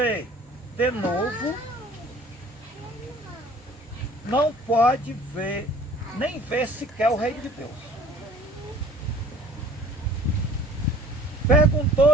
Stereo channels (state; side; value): normal; both; correlation 0.50